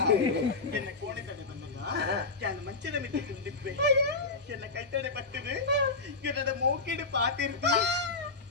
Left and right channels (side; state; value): right; quieter; 3.8 dB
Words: ಎನ್ನ ಕೋಣೆ ತಡೆ ಬಂದಾಗ ನಾನು ಮಂಚದ ಮಿತಿ ತಿಂದಿದ್ದೆ ಎನ್ನ ಕೈ ತಡೆ ಬರ್ತದೆ ಎನ್ನದ ಮೋಕಿಡು ಪಾತಿರ್ತಿ